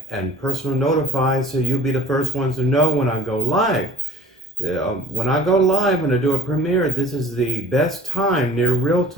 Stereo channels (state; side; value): normal; both; correlation 0.48